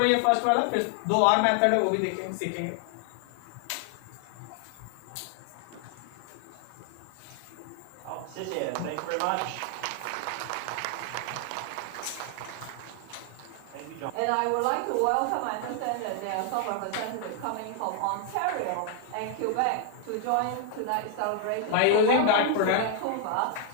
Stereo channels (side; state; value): both; different; correlation 0.00